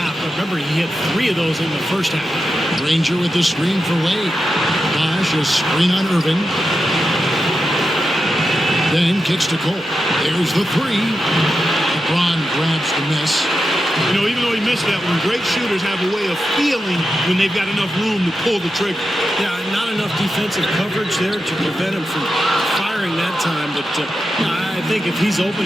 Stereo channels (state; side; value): normal; both; correlation 0.89